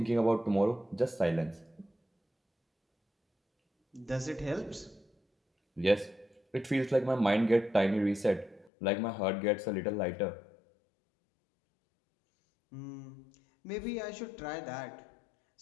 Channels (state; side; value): drops out; right; at 8.7 s